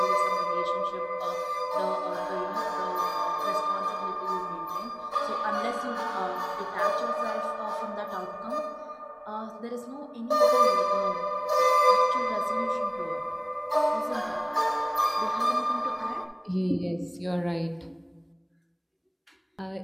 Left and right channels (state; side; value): identical; both; correlation 1.00